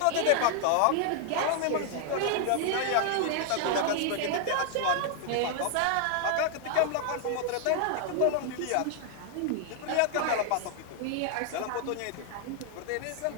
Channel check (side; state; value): both; different; correlation 0.00